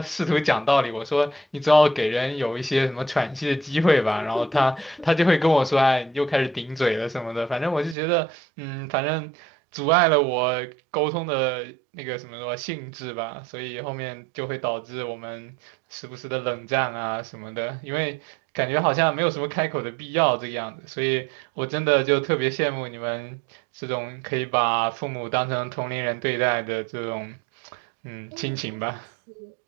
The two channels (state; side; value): drops out; left; at 8.0 s